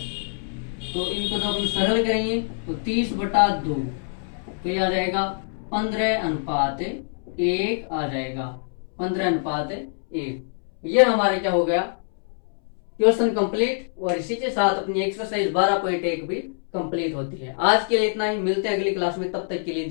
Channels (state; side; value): silent; right; 62 dB below the other